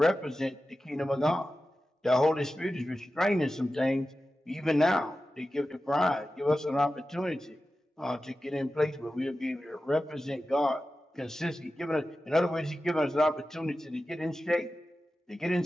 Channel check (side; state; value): both; normal; correlation 0.93